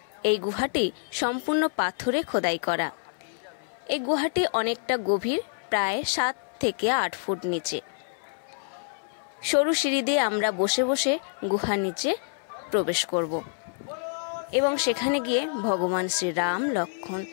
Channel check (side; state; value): right; silent; 60 dB below the other